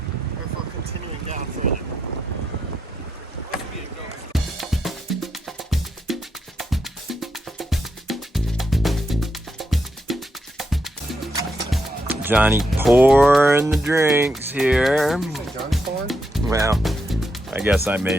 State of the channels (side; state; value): both; normal; correlation 0.82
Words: or if we're continuing down further. Johnny pouring the drinks here. John's pouring? Well, I guess I